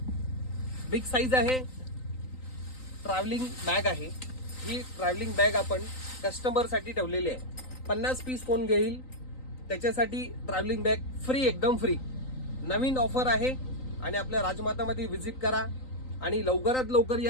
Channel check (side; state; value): right; late; 3.9 ms